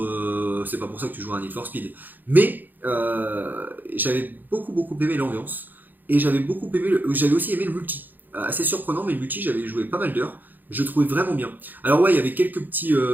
c'est pas pour ça que tu joues à un Need for Speed. Mais j'avais beaucoup aimé l'ambiance. Et j'avais aussi aimé le multi. assez surprenant, mais le multi, j'avais joué pas mal d'heures. Je le trouvais vraiment bien. Alors ouais, il y avait quelques petits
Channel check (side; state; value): left; late; 0.087 ms